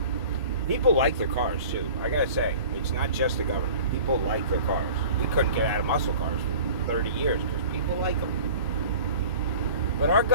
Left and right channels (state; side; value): inverted; both; correlation -0.43